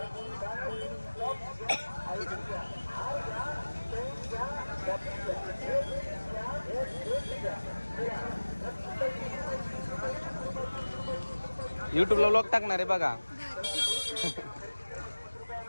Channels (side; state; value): both; inverted; correlation -1.00